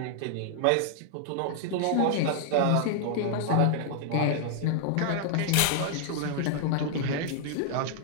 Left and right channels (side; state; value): both; different; correlation -0.01